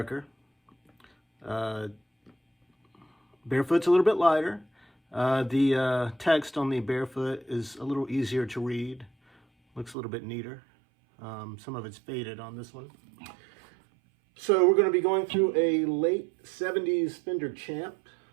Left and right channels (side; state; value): left; drops out; at 10.0 s